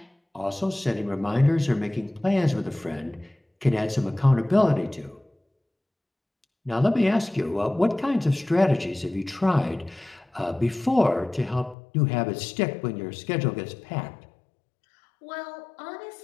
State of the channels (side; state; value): right; drops out; at 11.8 s